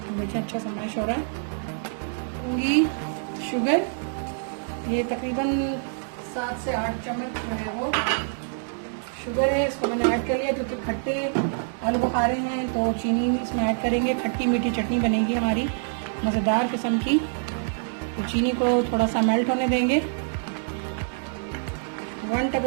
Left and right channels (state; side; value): silent; left; digital silence